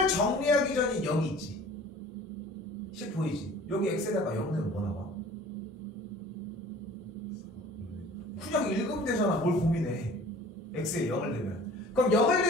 정리하기 전에 0이 있지. 10 보이지? 여기 x에다가 0 넣으면 뭐 나와? 그냥 읽으면 되잖아. 뭘 고민해. x에 0을 넣으면. 그럼 0을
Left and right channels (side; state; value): both; normal; correlation 0.47